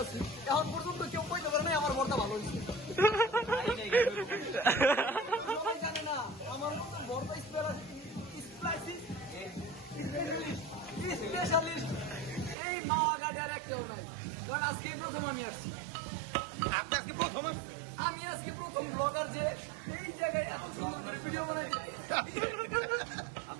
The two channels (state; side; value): drops out; left; at 12.6 s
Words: এখন পর্যন্ত কেউ কইতে পারে না আমার ভর্তা ভালো হয়েছে। সবাই জানে না আমার মতো ভর্তা স্পেশালিস্ট এই মাওয়াঘাটে আর কেউ নাই, কারণ আজকে প্রথম আমি আসছি। আপনি আজকে প্রথম আসছেন? আমি আজকে প্রথম ব্লগার যে এই জায়গায় এত সুন্দর করে ভিডিও বানাইছে।